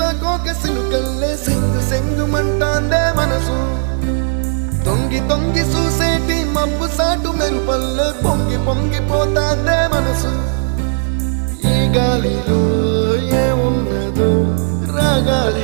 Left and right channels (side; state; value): left; silent; digital silence